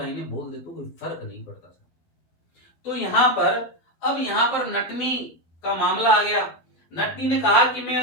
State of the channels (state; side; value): late; right; 12 ms